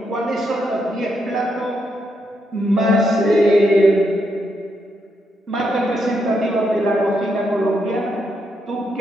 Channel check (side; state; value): both; normal; correlation 0.80